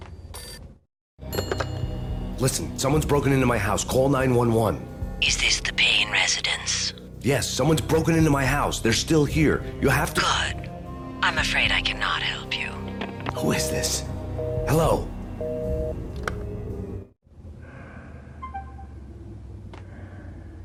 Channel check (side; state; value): both; identical; correlation 1.00